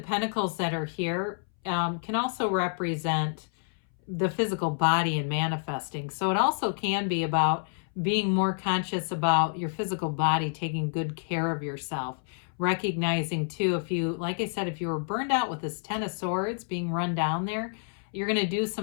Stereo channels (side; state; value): right; silent; 59 dB below the other